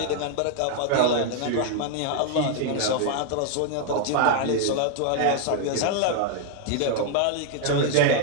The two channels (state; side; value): different; both; correlation 0.00